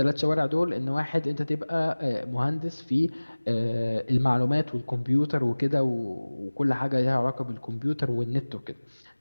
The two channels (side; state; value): both; inverted; correlation -1.00